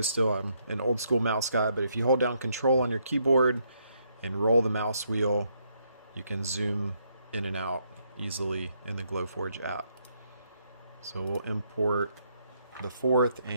still. I'm an old school mouse guy, but if you hold down control on your keyboard and roll the mouse wheel, you can zoom in and out easily in the Glowforge app. So we'll import the fourth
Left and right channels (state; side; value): inverted; both; correlation -0.74